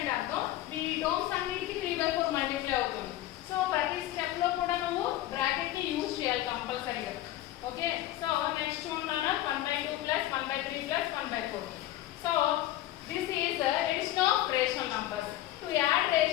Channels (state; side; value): quieter; right; 14.5 dB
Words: అర్థం ఈ టర్మ్స్ అన్నిటికీ 3 by 4 మల్టిప్లై అవుతుంది. సో ప్రతి స్టెప్ లో కూడా నువ్వు బ్రాకెట్ ని యూజ్ చేయాలి కంపల్సరీగా. ఓకే, సో నెక్స్ట్ చూడండి 1 by 2 plus 1 by 3 plus 1 by 4. So this is addition of rational numbers. To add